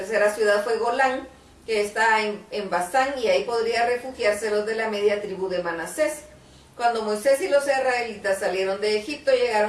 ciudad fue Golán, que está en Basán, y ahí podrían refugiarse los de la media tribu de Manasés. Cuando Moisés y los israelitas salieron de Egipto,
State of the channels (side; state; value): both; identical; correlation 1.00